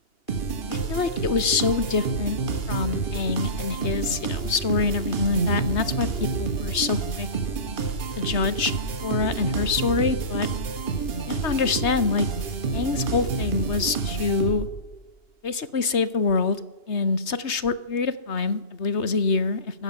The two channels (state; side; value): late; right; 3.2 ms